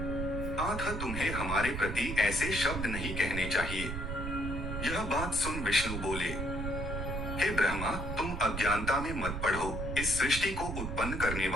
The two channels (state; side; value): noise; right; rumble, 4 dB below the sound